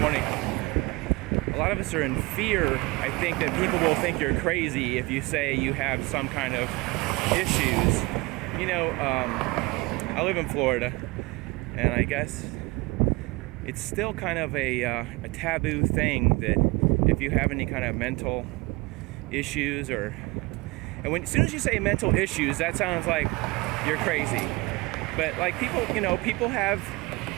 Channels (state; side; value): quieter; left; 24.1 dB